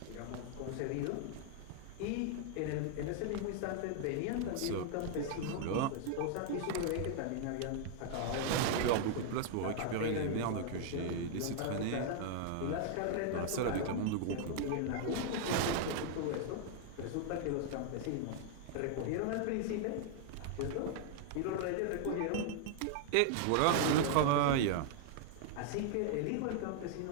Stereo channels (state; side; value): different; both; correlation 0.00